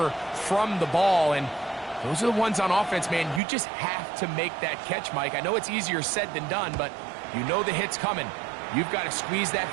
from the ball. And those are the ones on offense, man. You just have to make that catch, Mike. I know it's easier said than done, but you know the hit's coming. You've got to squeeze that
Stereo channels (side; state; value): left; drops out; at 3.4 s